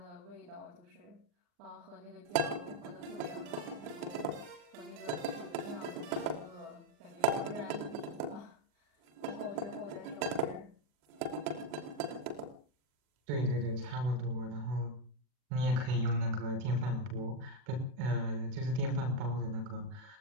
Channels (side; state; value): left; late; 41 ms